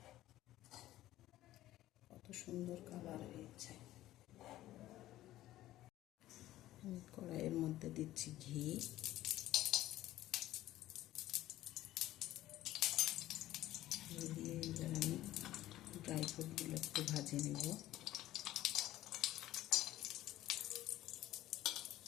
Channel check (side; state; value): right; quieter; 14.8 dB